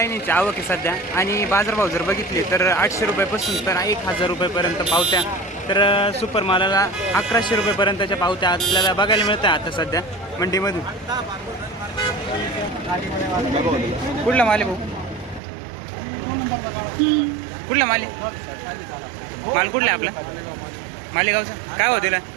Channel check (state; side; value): drops out; left; at 15.4 s